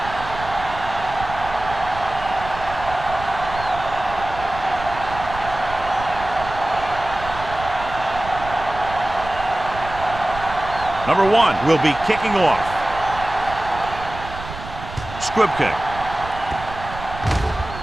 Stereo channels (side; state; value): right; noise; rumble, 12 dB below the sound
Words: Number 1 will be kicking off. Squib kick.